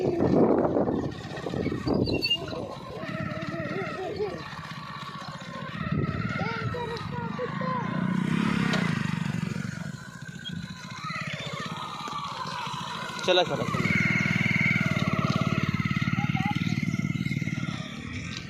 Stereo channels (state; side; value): identical; both; correlation 1.00